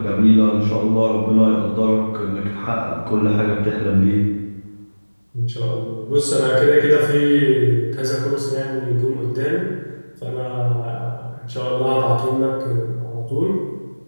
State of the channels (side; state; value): both; inverted; correlation -1.00